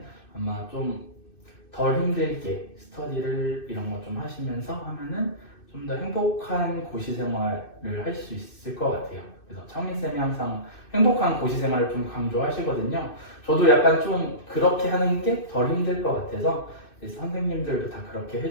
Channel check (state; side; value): late; right; 2.6 ms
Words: 아마 좀 덜 힘들게 스터디를 이런 거 좀 하시면서 하면은 좀 더 행복한 고시 생활을 할 수 있을 것 같아요. 그래서 창민쌤이 항상 행복한 고시 생활을 좀 강조하시거든요. 저도 약간 좀 그렇게 하는 게 덜 힘들 것 같아서 선생님들도 다 그렇게